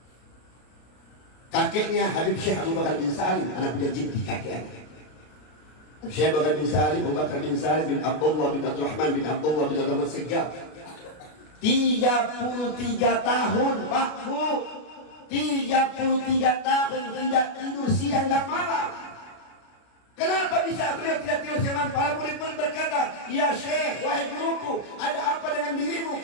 Kakeknya Habib Syekh Abu Bakar bin Salim, anak budak Jiddi kakeknya. Syekh Abu Bakar bin Salim, Abu Bakar bin Salim bin Abdullah bin Abdul Rahman bin Abdullah bin Abdul Segaf. 33 tahun Pak Bu, 33 tahun tidak tidur siang dan malam. Kenapa bisa beliau tidak tidur siang malam? Para murid-murid berkata, ya Syekh, wahai guruku, ada apa dengan dirimu?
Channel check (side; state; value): right; late; 33 ms